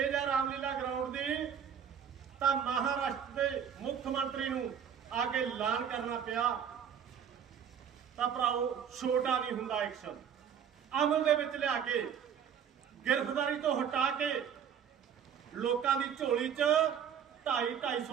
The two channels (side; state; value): left; quieter; 8.1 dB